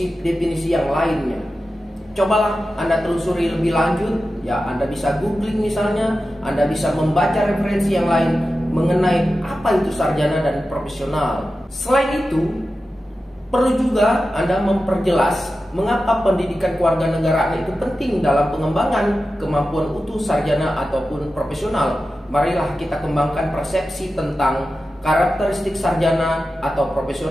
yang lainnya? Cobalah Anda telusuri lebih lanjut. Ya, Anda bisa googling misalnya, Anda bisa membaca referensi yang lain mengenai apa itu sarjana dan profesional. Selain itu, perlu juga Anda memperjelas mengapa pendidikan kewarganegaraan itu penting dalam pengembangan kemampuan utuh sarjana ataupun profesional. Marilah kita kembangkan persepsi tentang karakteristik sarjana atau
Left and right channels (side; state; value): both; normal; correlation 0.93